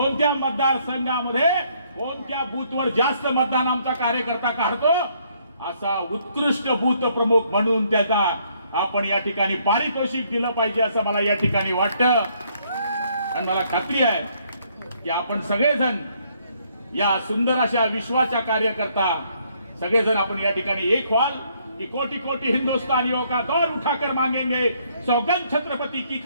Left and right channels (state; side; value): inverted; both; correlation -0.68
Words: मतदारसंघामध्ये कोणत्या बूथवर जास्त मतदान आमचा कार्यकर्ता काढतो, असा उत्कृष्ट बूथ प्रमुख म्हणून त्याचा आपण या ठिकाणी पारितोषिक दिलं पाहिजे, असं मला या ठिकाणी वाटतं. आणि मला खात्री आहे की आपण सगळेजण या सुंदर अशा विश्वाच्या कार्यकर्ता सगळेजण आपण या ठिकाणी एक व्हाल कि कोटि कोटि हिंदुस्तानियों का दौर उठाकर मांगेंगे, सौगंध छत्रपति की